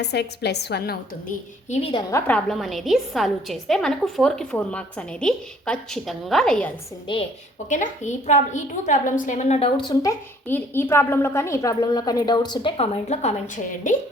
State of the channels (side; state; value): both; normal; correlation 0.59